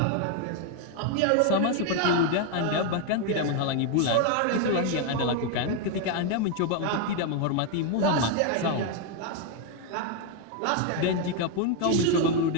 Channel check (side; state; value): both; different; correlation 0.01